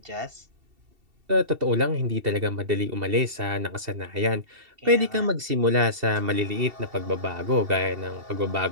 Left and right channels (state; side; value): late; left; 2.7 ms